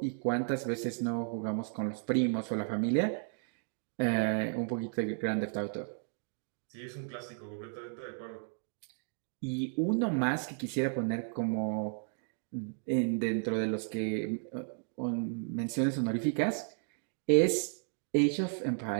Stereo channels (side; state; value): left; silent; 55 dB below the other